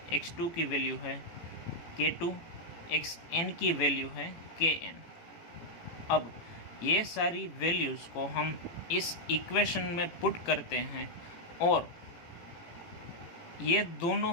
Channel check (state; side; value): late; right; 18 ms